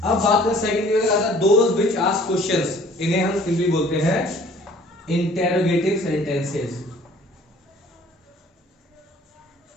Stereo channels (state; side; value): normal; both; correlation 0.53